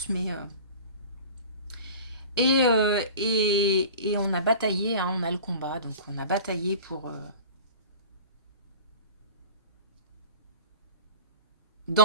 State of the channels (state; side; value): inverted; both; correlation -0.39